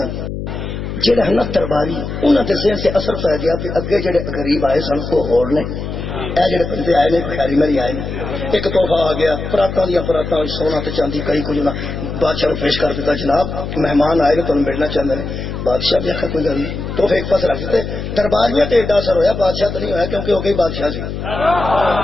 جہاں ہے نا درباری انہوں کے ذہن سے اثر پی گیا بھی اگے جڑے غریب آئے سن وہ ہور نے اے جڑے بندے آئے نے کوئی خیری میری آئے نے ایک تحفہ آ گیا پراتاں دیا پراتاں سونا تے چاندی کئی کچھ بادشاہ کو پیش کر دیتا جناب مہمان آئے نے تمہیں ملنا چاہتے ہیں بادشاہ بھی آخر کوئی گل نہیں تحفے ایک پاس رکھ دیتے درباریاں تے ایڈا اثر ہویا بادشاہ تو نہیں ہویا کیونکہ وہ گئی بادشاہ سی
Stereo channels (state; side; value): noise; left; hum, 6 dB below the sound